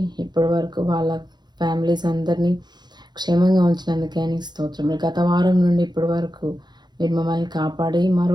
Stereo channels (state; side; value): late; left; 0.21 ms